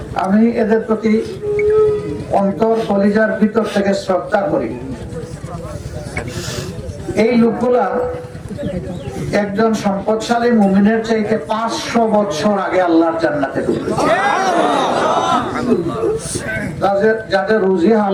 আমি এদের প্রতি অন্তর কলিজার ভিতর থেকে শ্রদ্ধা করি। এই লোকগুলা একজন সম্পদশালী মুমিনের চাইতে 500 বছর আগে আল্লাহর জান্নাতে ঢুকেছে। যাদের রুজি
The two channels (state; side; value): identical; both; correlation 1.00